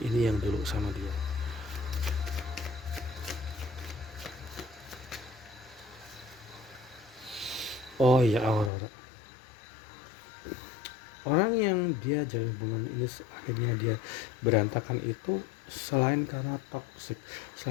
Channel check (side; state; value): right; drops out; at 8.7 s